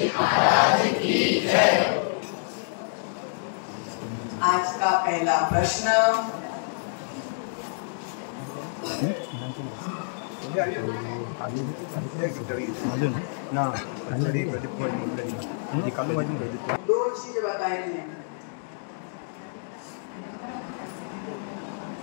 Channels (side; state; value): right; silent; digital silence